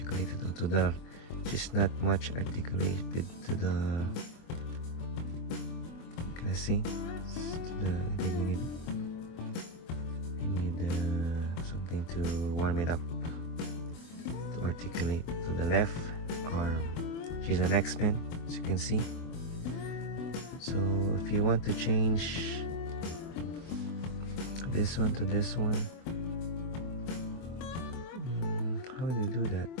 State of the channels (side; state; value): right; late; 24 ms